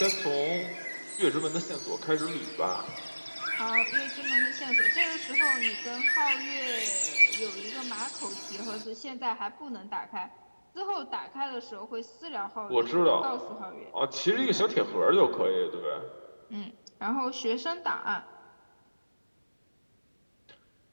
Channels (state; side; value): inverted; both; correlation -1.00